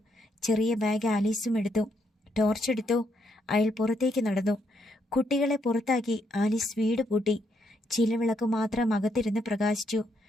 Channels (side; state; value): both; normal; correlation 0.76